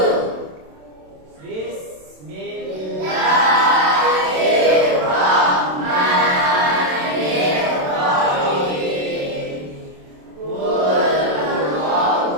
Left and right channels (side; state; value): left; late; 27 ms